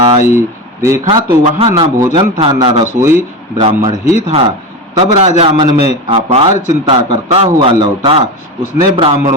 देखा तो वहां न भोजन था न रसोई, ब्राह्मण ही था। तब राजा मन में अपार चिंता करता हुआ लौटा। उसने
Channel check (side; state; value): both; normal; correlation 0.21